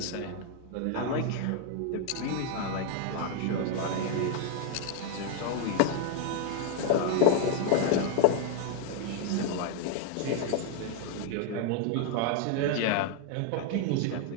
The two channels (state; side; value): different; both; correlation 0.01